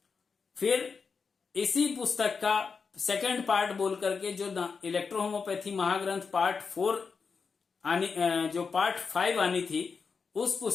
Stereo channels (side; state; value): right; quieter; 5.3 dB